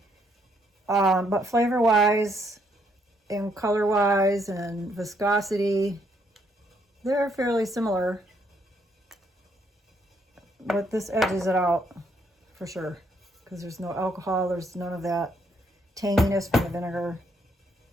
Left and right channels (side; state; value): both; normal; correlation 0.72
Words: But flavor-wise and color-wise and viscosity, they're fairly similar. But this edges it out for sure because there's no alcohol, there's none of that tanginess from the vinegar.